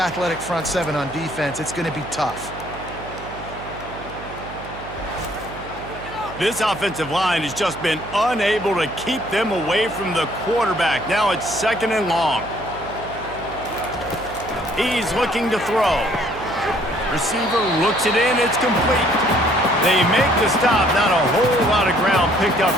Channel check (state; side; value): noise; right; hum, 14 dB below the sound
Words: front seven on defense, it's going to be tough. This offensive line has just been unable to keep them away from the quarterback. Now it's 2nd and long. He's looking to throw. Receiver looks it in. It's complete. They make the stop. Not a whole lot of ground picked up